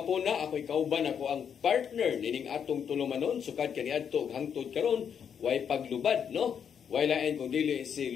ako'y kauban ako ang partner nining atong tulumanon sukad kaniadto hangtod karon way paglubad no. Wailain kung dili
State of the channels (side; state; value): right; quieter; 7.7 dB